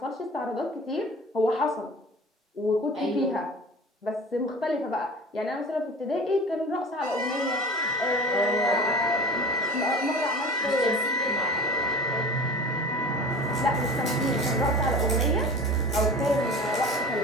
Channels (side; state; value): both; normal; correlation 0.37